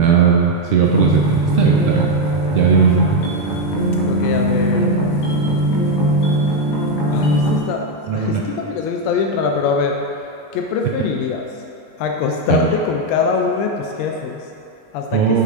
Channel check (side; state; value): right; late; 19 ms